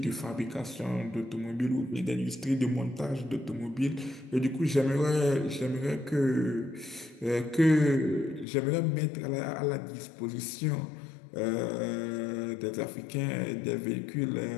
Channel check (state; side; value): drops out; right; at 8.5 s